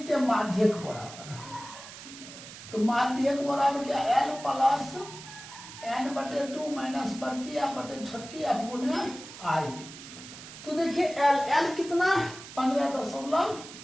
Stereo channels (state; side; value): noise; right; hiss, 14 dB below the sound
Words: हैं माध्यक बराबर, तो माध्यक बराबर क्या L प्लस n/2 माइनस बड़की एफ बटे छोटकी एफ गुणे I। तो देखिए L कितना